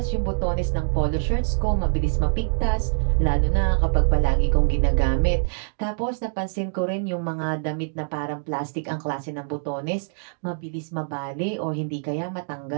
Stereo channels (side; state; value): left; silent; digital silence